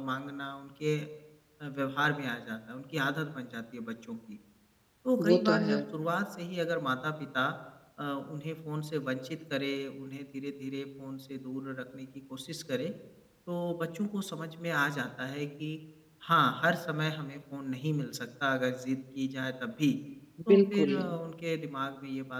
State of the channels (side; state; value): both; identical; correlation 1.00